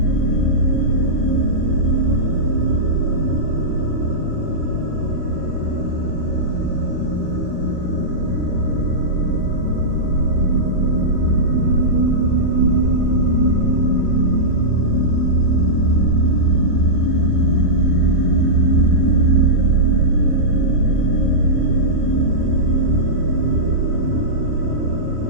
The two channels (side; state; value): left; late; 13 ms